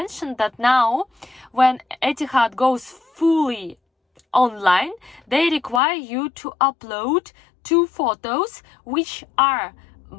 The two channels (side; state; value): right; drops out; at 5.8 s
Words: that now when Etihad goes fully online, they require you to upload 2 photos which are